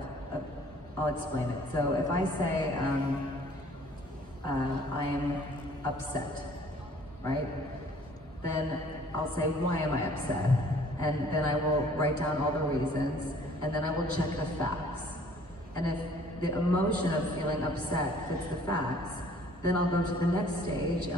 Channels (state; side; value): normal; both; correlation 0.55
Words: I'll explain it. So if I say I am upset, right? Then I'll say, why am I upset? And then I will write down all the reasons, and then I will check the facts. And if the emotion of feeling upset fits the facts, then I'll go to the next stage